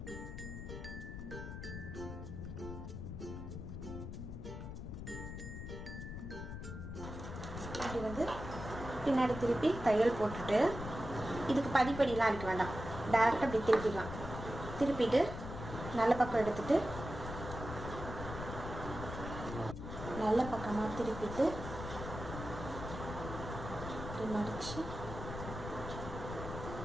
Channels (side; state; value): left; noise; rumble, 8 dB below the sound